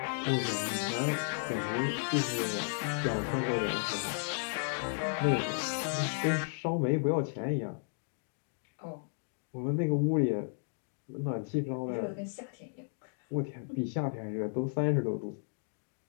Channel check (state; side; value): silent; right; digital silence